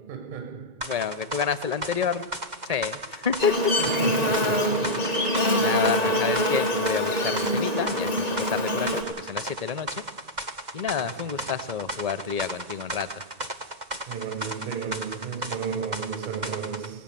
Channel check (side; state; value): left; late; 1.9 ms